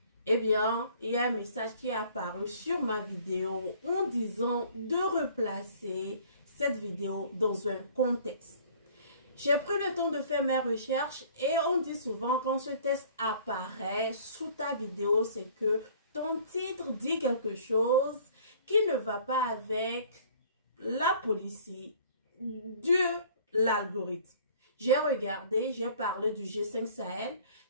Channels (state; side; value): inverted; both; correlation -0.52